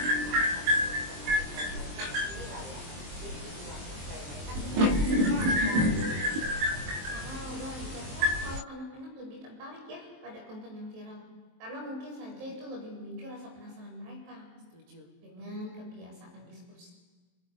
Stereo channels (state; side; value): late; left; 23 ms